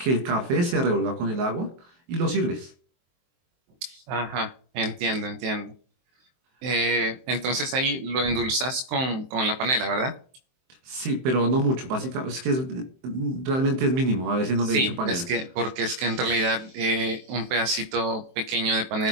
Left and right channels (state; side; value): late; left; 23 ms